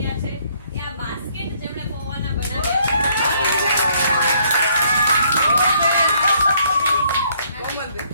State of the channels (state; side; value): inverted; both; correlation -0.66